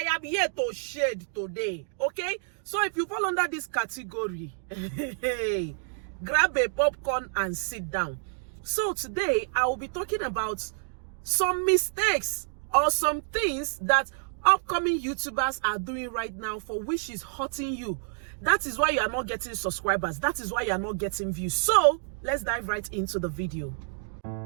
am here to shade today. Okay, so if you fall under this category, grab a popcorn and sit down. So today I will be talking about some mistakes or some things that upcoming YouTubers are doing right now for which is hurting you. That is why you are not getting subscribers. That is why you are not getting views. So let's dive right into the video.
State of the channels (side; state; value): left; silent; digital silence